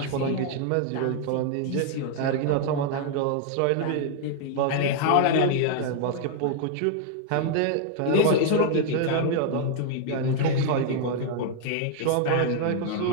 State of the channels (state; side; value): different; both; correlation 0.00